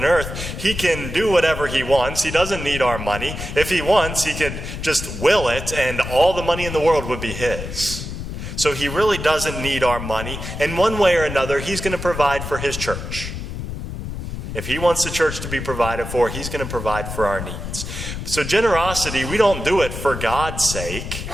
earth. He can do whatever He wants. He doesn't need our money. If He wants, He could just will it, and all the money in the world would be His. So He really doesn't need our money. And one way or another, He's going to provide for His church. If He wants the church to be provided for, He's going to provide for our needs. So generosity, we don't do it for God's sake.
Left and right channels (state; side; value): noise; left; rumble, 7 dB below the sound